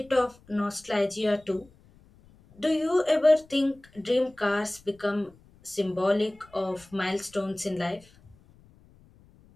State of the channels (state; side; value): noise; left; rumble, 28 dB below the sound